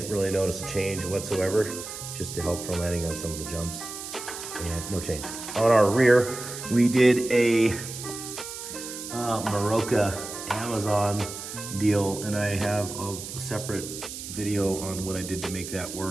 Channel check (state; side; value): noise; right; hiss, 9 dB below the sound